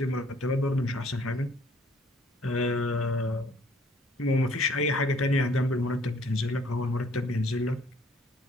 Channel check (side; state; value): both; normal; correlation 0.60